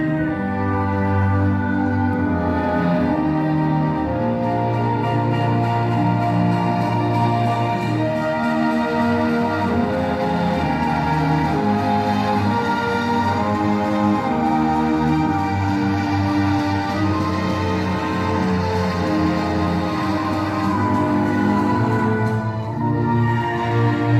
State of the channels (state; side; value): identical; both; correlation 1.00